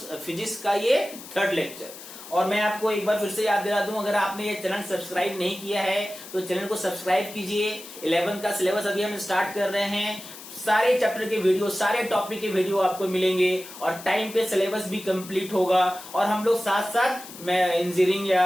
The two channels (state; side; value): noise; left; hiss, 15 dB below the sound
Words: physics का ये थर्ड लेक्चर। और मैं आपको एक बार फिर से याद दिला दूं, अगर आपने ये चैनल सब्सक्राइब नहीं किया है तो चैनल को सब्सक्राइब कीजिए। 11 का सिलेबस अभी हम स्टार्ट कर रहे हैं, सारे चैप्टर के वीडियो, सारे टॉपिक के वीडियो आपको मिलेंगे और टाइम पे सिलेबस भी कंप्लीट होगा। और हम लोग साथ साथ इंजीनियरिंग